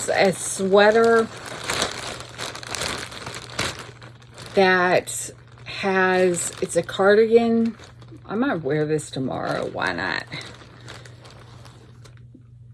a sweater that has, it's a cardigan. I might wear this tomorrow. Why not?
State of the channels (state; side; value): identical; both; correlation 1.00